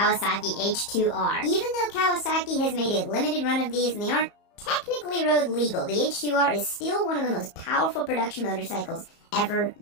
H2R. Even though Kawasaki has made a limited run of these and they aren't technically road legal, the H2R is still one of the most powerful production motorcycles ever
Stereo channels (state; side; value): late; right; 34 ms